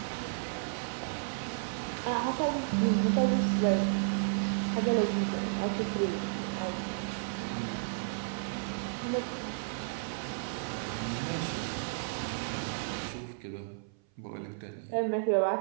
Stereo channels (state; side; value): silent; left; 56 dB below the other